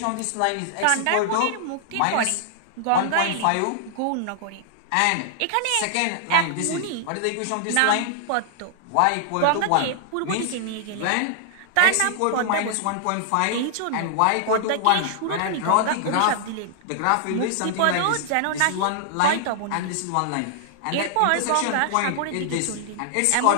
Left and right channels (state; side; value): different; both; correlation -0.01